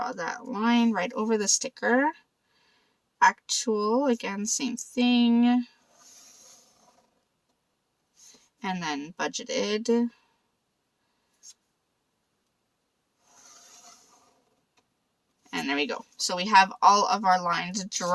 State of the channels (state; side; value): identical; both; correlation 1.00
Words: that line right over the sticker. Actual, again, same thing. And then budgeted. And there we go. So we have all of our lines